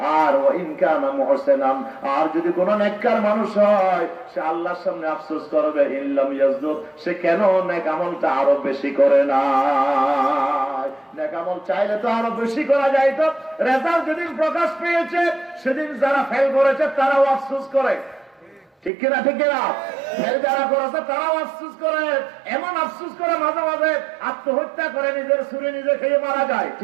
আর ওয়া ইন কানা মুহসিনান, আর যদি কোনো নেককার মানুষ হয় সে আল্লাহর সামনে আফসোস করবে ইল্লাম ইয়াজদুদ, সে কেন নেক আমলটা আরো বেশি করে না। নেক আমল চাইলে তো আরো বেশি করা যায়। তো রেজাল্ট যেদিন প্রকাশ পেয়েছে সেদিন যারা ফেল করেছে তারাও আফসোস করে, ঠিক কিনা? ঠিক কিনা? ফেল যারা করেছে তারাও আফসোস করে। এমন আফসোস করে মাঝে মাঝে আত্মহত্যা করে, নিজের ছুরি নিজে খেয়ে মারা যায়,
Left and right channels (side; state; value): left; drops out; at 18.9 s